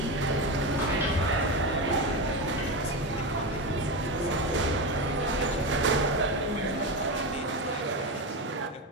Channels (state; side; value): normal; both; correlation 0.17